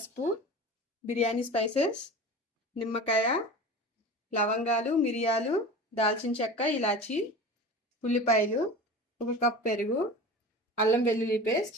బిర్యానీ స్పైసెస్, నిమ్మకాయ, లవంగాలు, మిరియాలు, దాల్చిన చెక్క, ఇలాచి, ఉల్లిపాయలు, 1 కప్ పెరుగు, అల్లం వెల్లుల్లి పేస్ట్,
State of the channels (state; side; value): normal; both; correlation 0.34